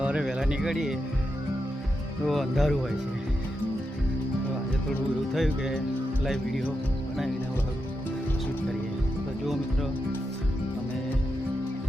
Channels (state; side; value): normal; both; correlation 0.86